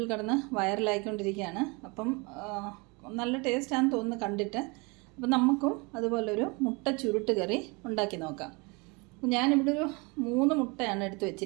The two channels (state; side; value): quieter; left; 28.5 dB